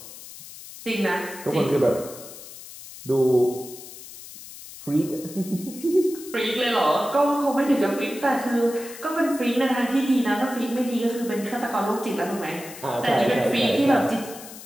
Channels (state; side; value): noise; left; hiss, 15 dB below the sound